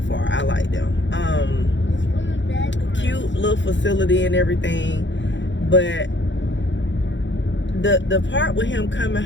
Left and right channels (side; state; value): right; late; 0.54 ms